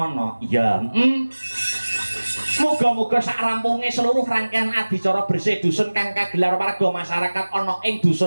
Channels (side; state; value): both; inverted; correlation -1.00